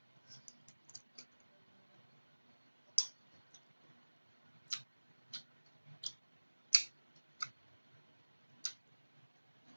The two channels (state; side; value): inverted; both; correlation -1.00